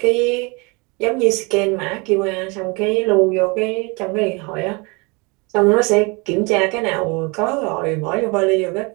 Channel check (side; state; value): left; quieter; 28.8 dB